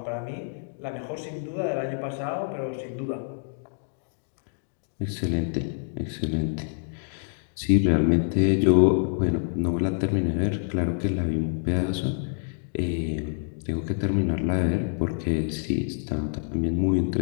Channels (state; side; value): silent; right; digital silence